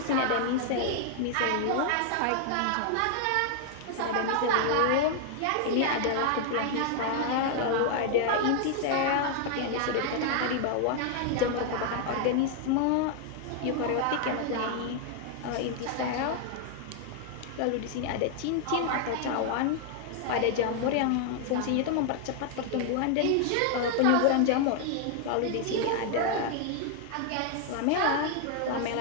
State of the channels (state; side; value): different; both; correlation 0.00